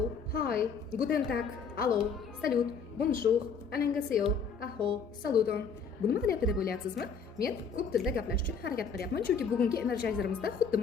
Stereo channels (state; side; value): quieter; right; 5.7 dB